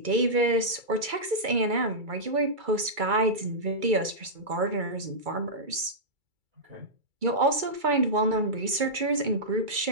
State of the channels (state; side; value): late; left; 2.3 ms